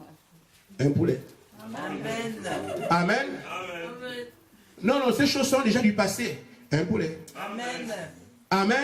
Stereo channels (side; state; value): both; identical; correlation 1.00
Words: Un poulet. Amen. Amen. Non, non, ces choses sont déjà du passé. Un poulet. Amen.